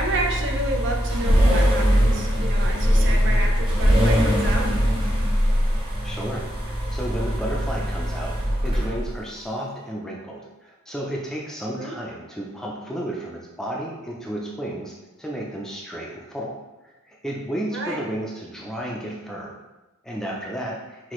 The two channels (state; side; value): normal; both; correlation 0.84